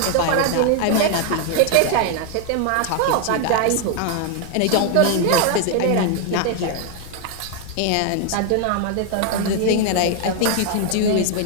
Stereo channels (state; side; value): different; both; correlation 0.00